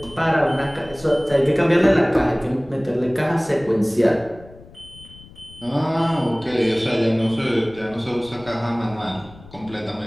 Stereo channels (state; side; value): noise; left; rumble, 21 dB below the sound